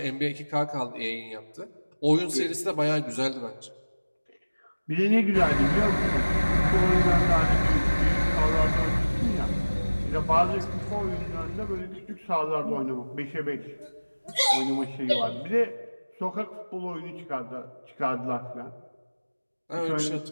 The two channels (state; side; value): inverted; both; correlation -1.00